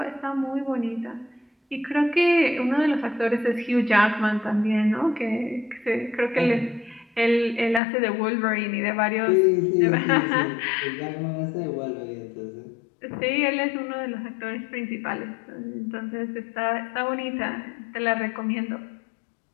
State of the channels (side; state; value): right; drops out; at 7.8 s